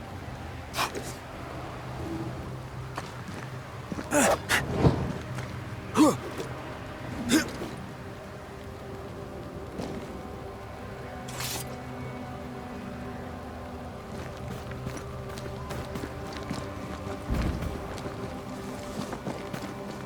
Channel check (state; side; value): identical; both; correlation 1.00